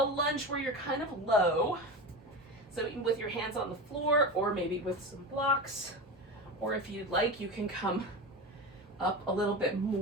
lunge where you're kind of low. So with your hands on the floor, or maybe with some blocks, or if you'd like, you can come up a little bit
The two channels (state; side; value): normal; both; correlation 0.24